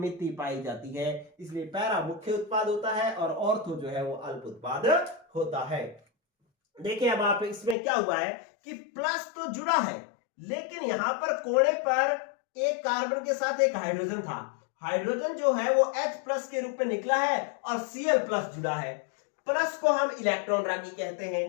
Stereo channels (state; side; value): drops out; right; at 7.8 s